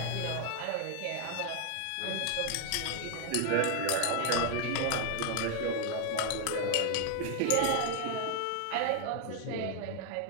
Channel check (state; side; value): different; both; correlation 0.00